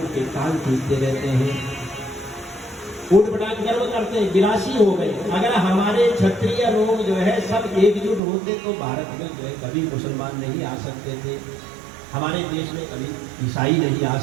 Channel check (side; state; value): left; drops out; at 8.2 s